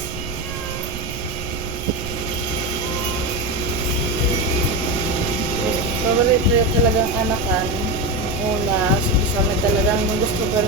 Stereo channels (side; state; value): right; noise; rumble, 9 dB below the sound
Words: Favorite ko talagang anakan. Una, kasama talagang gusto ko